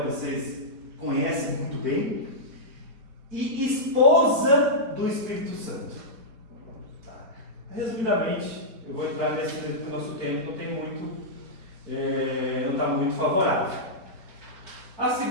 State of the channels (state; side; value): late; left; 4.3 ms